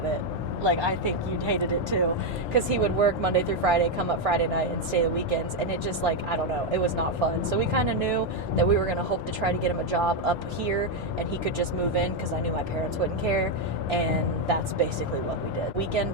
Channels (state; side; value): normal; both; correlation 0.03